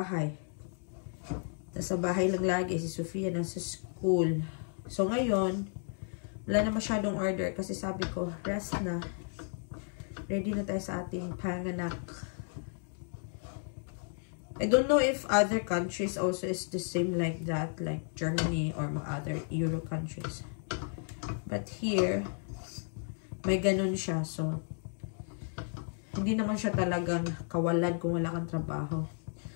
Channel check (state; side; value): silent; right; 56 dB below the other